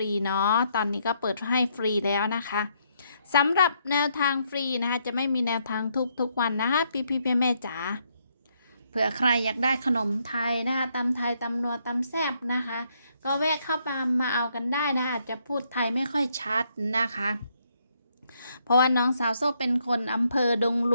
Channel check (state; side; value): inverted; both; correlation -0.73